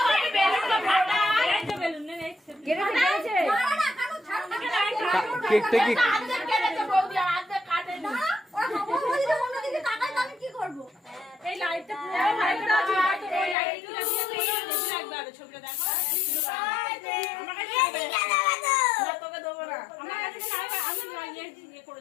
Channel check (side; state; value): right; drops out; at 13.6 s